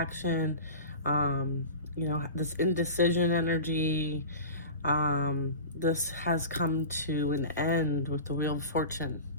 This indecision energy. This has come to an end with the Wheel of Fortune.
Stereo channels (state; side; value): inverted; both; correlation -0.33